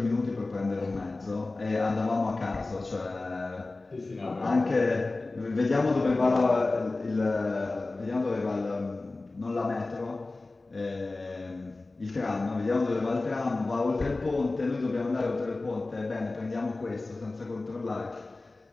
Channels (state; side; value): quieter; right; 3.3 dB